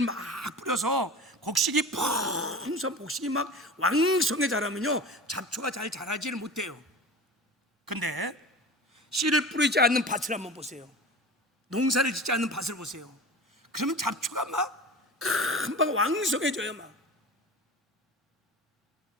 막 뿌려서 곡식이 풍성, 곡식이 막 왕성해 자라면요 잡초가 잘 자라지를 못해요. 근데 씨를 뿌리지 않는 밭을 한번 보세요. 농사를 짓지 않는 밭을 보세요. 그러면 잡초가 막 금방 왕성해져요. 막.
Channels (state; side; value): normal; both; correlation 0.35